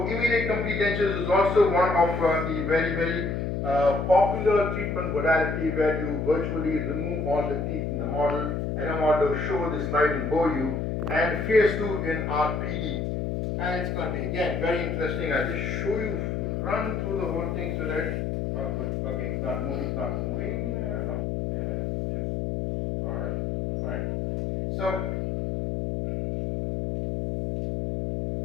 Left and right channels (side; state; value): left; noise; hum, 1 dB below the sound